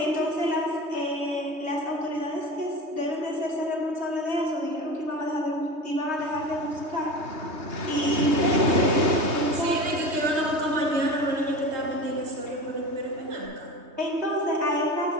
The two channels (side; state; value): left; late; 3.2 ms